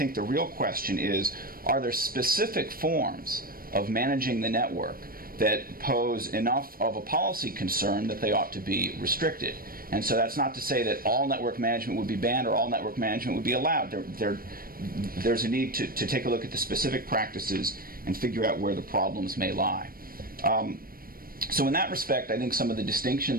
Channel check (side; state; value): left; late; 0.42 ms